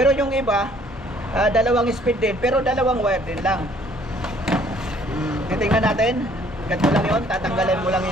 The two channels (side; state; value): both; normal; correlation 0.60